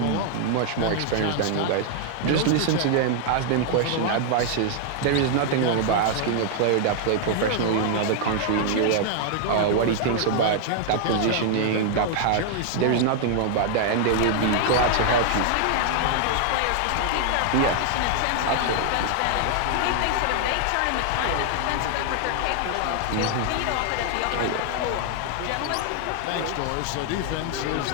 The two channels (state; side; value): different; both; correlation 0.00